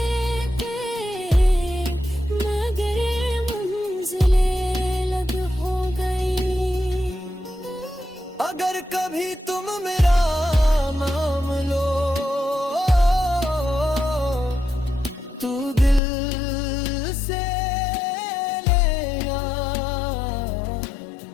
मगर मंजिलें अलग हो गई। अगर कभी तुम मेरा नाम लो तू दिल से लेना,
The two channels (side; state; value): right; drops out; at 16.0 s